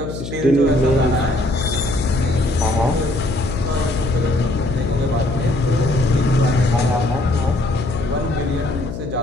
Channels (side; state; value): left; noise; hum, 8 dB below the sound